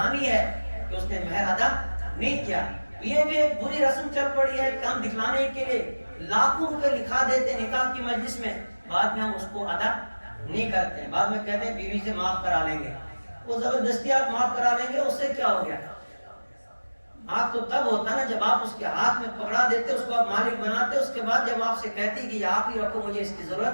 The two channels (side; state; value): both; inverted; correlation -1.00